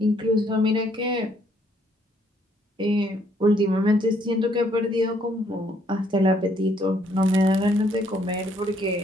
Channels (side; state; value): both; normal; correlation 0.68